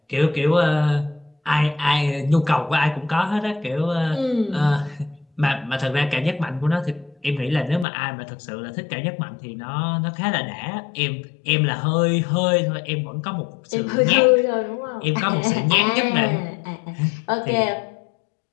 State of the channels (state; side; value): drops out; right; at 7.9 s